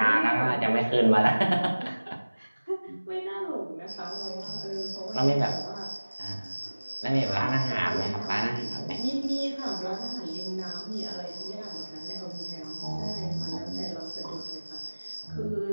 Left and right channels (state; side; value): inverted; both; correlation -1.00